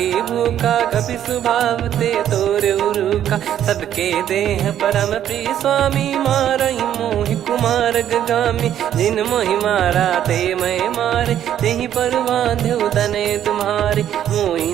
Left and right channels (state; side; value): quieter; left; 10.7 dB